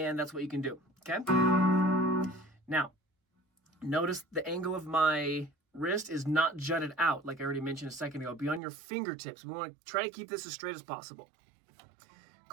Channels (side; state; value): left; drops out; at 8.6 s